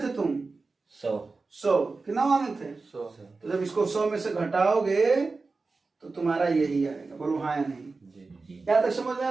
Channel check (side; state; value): left; quieter; 3.9 dB